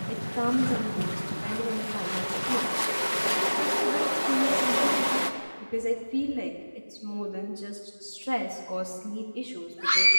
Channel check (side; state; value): both; inverted; correlation -1.00